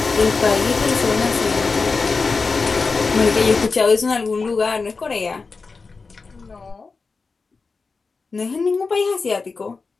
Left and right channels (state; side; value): quieter; right; 4.4 dB